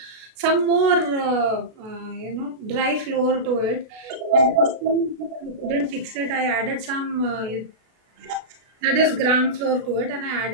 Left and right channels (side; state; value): left; late; 32 ms